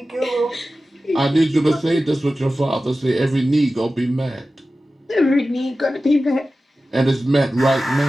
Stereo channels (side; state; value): both; normal; correlation 0.95